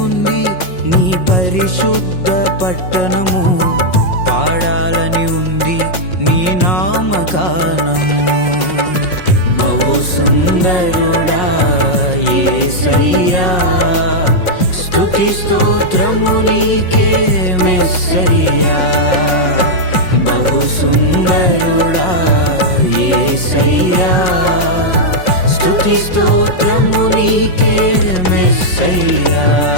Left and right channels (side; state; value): right; late; 5.5 ms